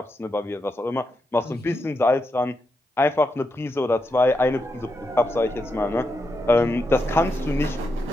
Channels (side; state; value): both; normal; correlation 0.85